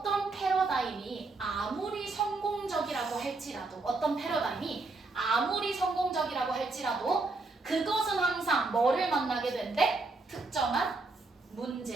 패러다임이 아무리 성공적이라고 할지라도 어떤 패러다임이 아무리 성공적이라고 할지라도 그것은 항상 뭐를 만나게 된대? 특정한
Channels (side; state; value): left; quieter; 3.5 dB